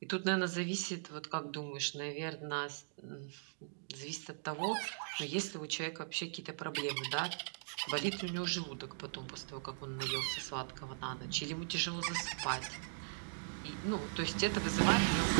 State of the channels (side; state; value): left; silent; digital silence